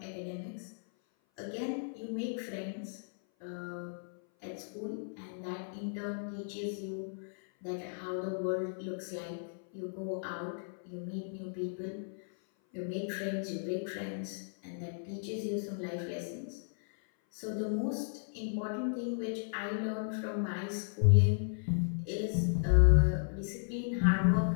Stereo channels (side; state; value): right; silent; 54 dB below the other